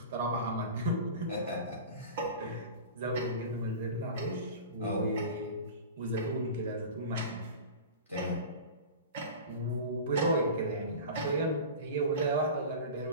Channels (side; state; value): both; inverted; correlation -0.33